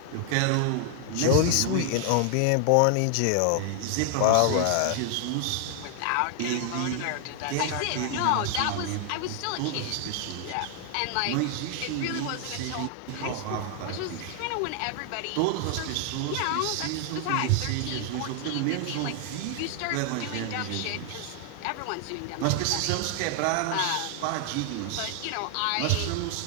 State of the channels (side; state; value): both; different; correlation 0.00